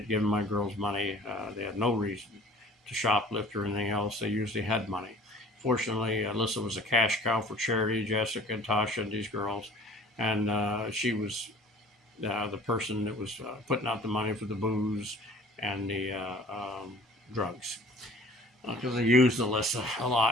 giving my girls money. They had no reason to shoplift or anything else. They usually had money. Fortunately, Alyssa was a cash cow for charity, Jessica and Tasha and these girls. And she was the person that was putting out the money for the booze and the drugs. Because they used Alyssa a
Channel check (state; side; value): normal; both; correlation 0.48